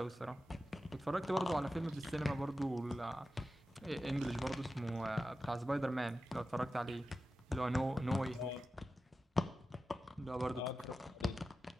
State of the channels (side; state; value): both; normal; correlation 0.93